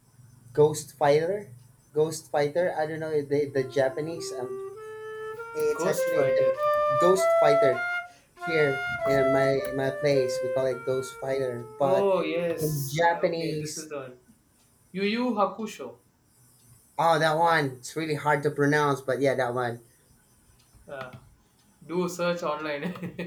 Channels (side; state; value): both; identical; correlation 1.00